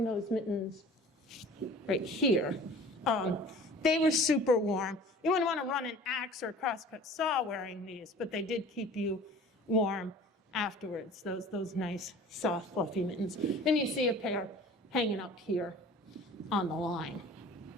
those mittens right here. They were super warm. You wouldn't want to run an axe or a crosscut saw wearing these, but they did keep you warm afterwards, those nice, soft, fluffy mittens. Then you see a pair hanging up here on the line.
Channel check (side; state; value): both; normal; correlation 0.45